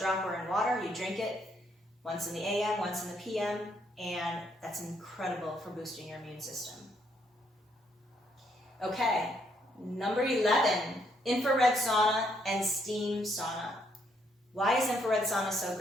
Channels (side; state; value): both; normal; correlation 0.72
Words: in water, you drink it once in the AM, once in the PM, and that's incredible for boosting your immune system. Okay, number 11, infrared sauna and steam sauna. Why is infrared sauna so